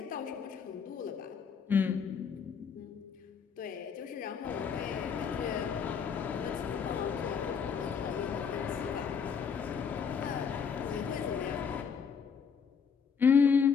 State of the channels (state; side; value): quieter; right; 6.5 dB